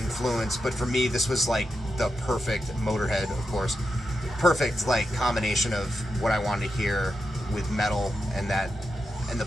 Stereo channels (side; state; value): both; normal; correlation 0.87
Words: but for me this was like the perfect, Motorhead of course, perfect like combination of what I wanted to hear with metal and the